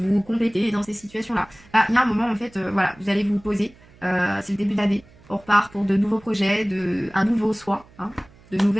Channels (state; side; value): noise; right; hum, 26 dB below the sound